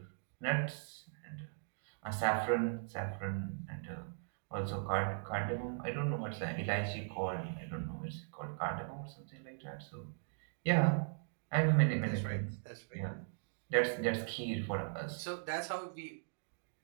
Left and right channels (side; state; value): left; silent; digital silence